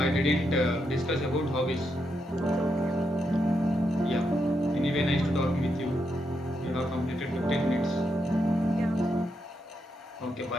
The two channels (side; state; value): both; normal; correlation 0.82